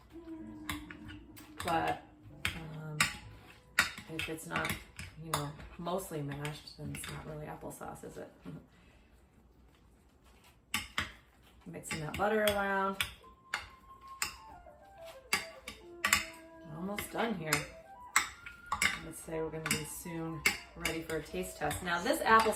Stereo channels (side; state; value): both; identical; correlation 1.00